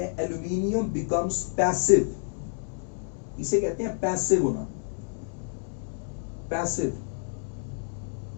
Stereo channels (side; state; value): right; silent; digital silence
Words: एल्यूमिनियम बिकम्स पैसिव। इसे कहते हैं पैसिव होना, पैसिव